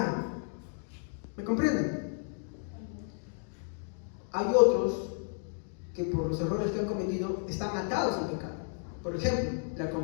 ¿Me comprenden? Hay otros que por los errores que han cometido están atados al pecado. Por ejemplo, la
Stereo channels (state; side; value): silent; right; digital silence